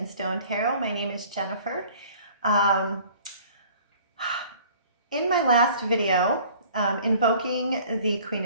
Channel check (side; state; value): both; inverted; correlation -0.50